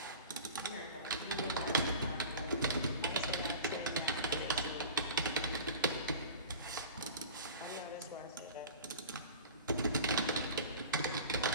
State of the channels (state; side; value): inverted; both; correlation -0.37